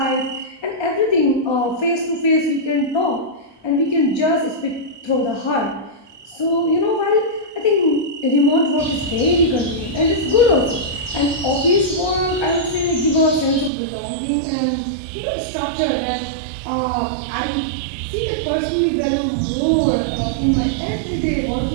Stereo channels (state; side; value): drops out; left; at 13.7 s